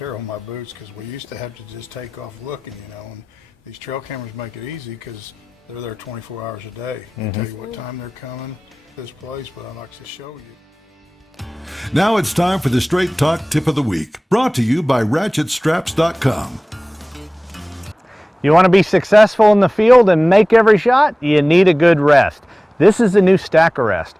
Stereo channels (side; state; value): both; normal; correlation 0.98